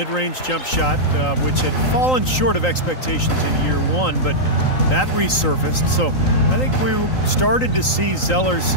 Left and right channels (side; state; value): right; late; 3.8 ms